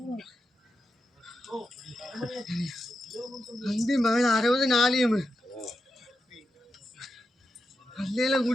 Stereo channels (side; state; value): both; normal; correlation 0.88